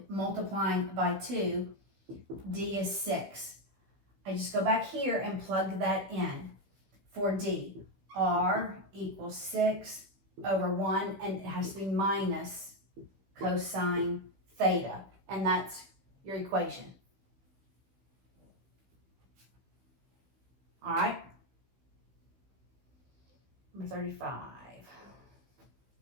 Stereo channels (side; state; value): left; late; 15 ms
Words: multiplying by 2, D is 6. I just go back here and plug that in for D. R equals 6 over 1, and it has to be minus cosine theta, and that's your equation. All right, number 35.